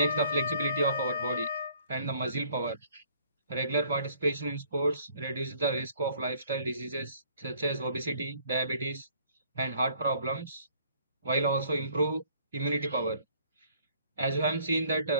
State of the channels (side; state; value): both; inverted; correlation -0.60